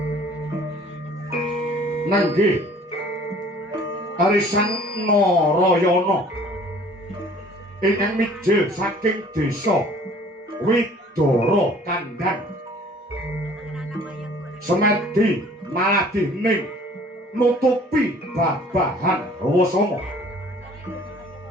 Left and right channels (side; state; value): both; normal; correlation 0.52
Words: nenggih arisan Narayana ingkang mijil saking desa Widara Kandhang semedi maladihning nutupi babahan Rawasanga